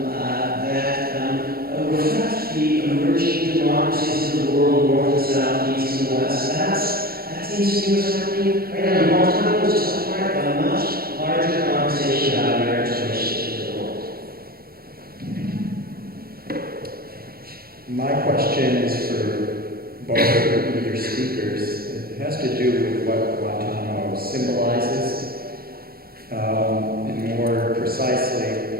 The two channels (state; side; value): late; left; 0.44 ms